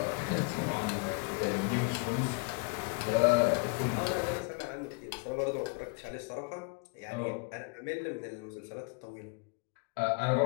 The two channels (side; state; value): right; quieter; 30.5 dB